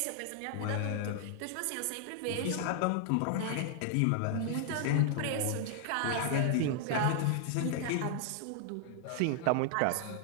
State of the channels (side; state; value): both; different; correlation 0.00